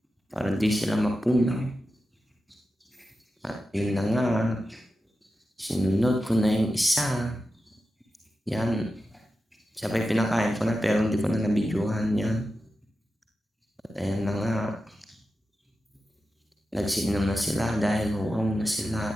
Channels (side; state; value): both; normal; correlation 0.91